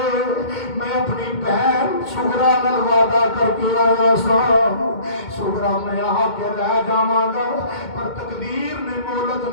میں اپنی بہن سغرا نال وعدہ کر کے آیا سا سغرا میں آ کے لے جاواں گا پر تقدیر نے مہلت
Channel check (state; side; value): late; right; 2.2 ms